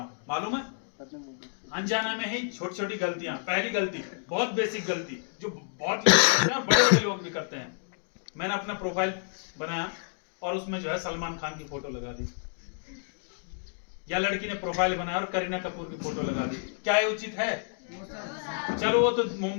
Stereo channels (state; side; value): silent; right; digital silence